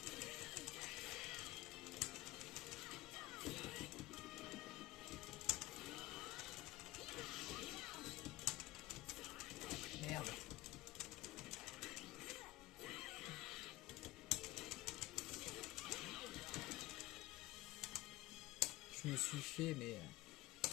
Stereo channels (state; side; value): quieter; right; 18.8 dB